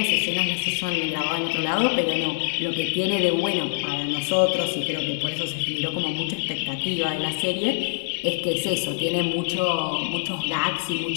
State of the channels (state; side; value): silent; right; digital silence